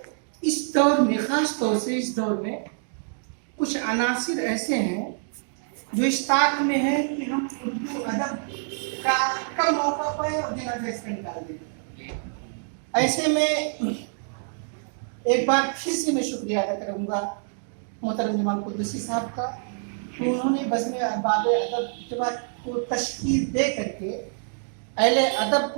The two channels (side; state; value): left; silent; 61 dB below the other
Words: इस दौर में, ख़ास तौर से इस दौर में कुछ अनासिर ऐसे हैं जो इस ताक में है कि हम उर्दू अदब का कम मौका पाए और जनाजा इसका निकाल दें। ऐसे में एक बार फिर से मैं शुक्रिया अदा करूँगा मोहतरम जमाल कुद्दूसी साहब का, कि उन्होंने बज़्म अहबाब अदब जमात को तश्कील दे करके अहले अदब